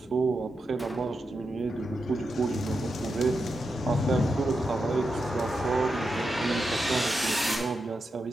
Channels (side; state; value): both; normal; correlation 0.87